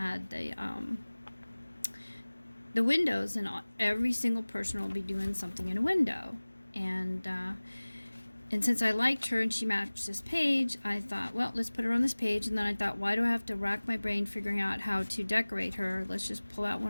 the windows, and every single person will be doing something in a window. And since I liked her and she matched this page, I thought, well, let's put her on this page. And then I thought, why do I have to rack my brain figuring out how to decorate her? Let's just pull out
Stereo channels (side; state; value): both; inverted; correlation -1.00